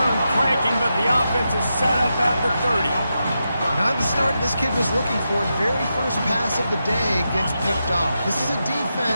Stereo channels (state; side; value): inverted; both; correlation -0.87